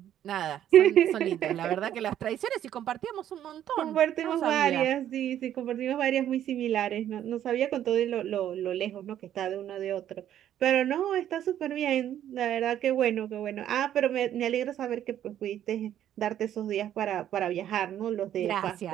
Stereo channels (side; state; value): left; quieter; 11.0 dB